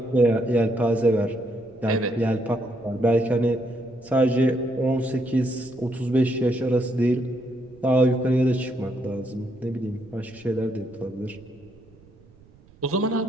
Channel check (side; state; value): right; noise; rumble, 27 dB below the sound